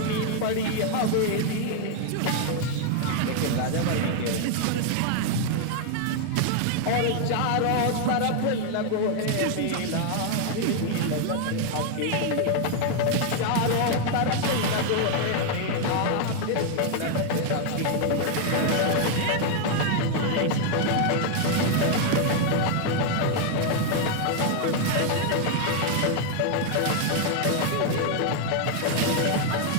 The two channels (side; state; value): both; different; correlation 0.00